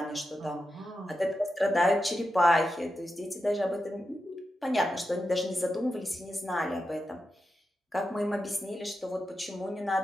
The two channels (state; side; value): normal; both; correlation 0.89